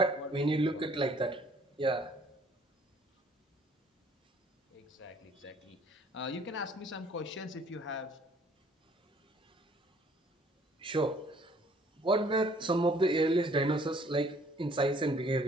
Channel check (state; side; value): normal; both; correlation 0.59